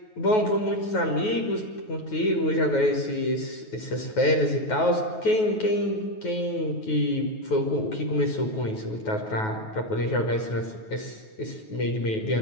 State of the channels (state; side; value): late; right; 9.3 ms